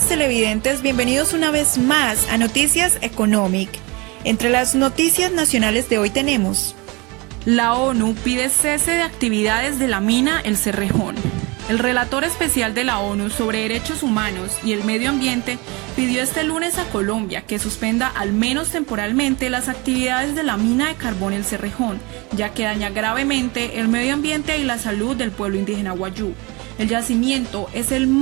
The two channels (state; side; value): quieter; left; 26.2 dB